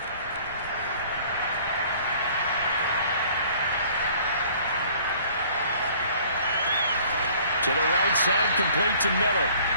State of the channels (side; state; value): both; inverted; correlation -0.54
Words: To the right side, complete to Miller.